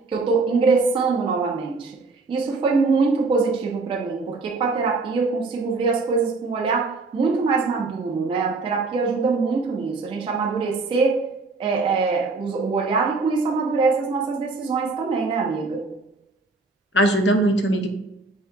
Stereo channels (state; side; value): quieter; left; 3.7 dB